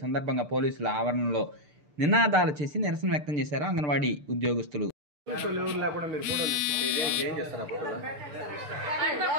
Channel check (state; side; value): late; left; 6.7 ms